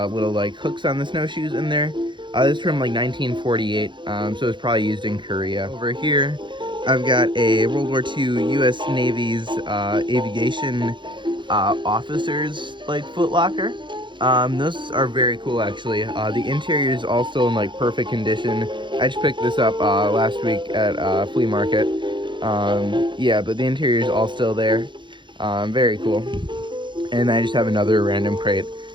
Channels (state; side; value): late; left; 0.23 ms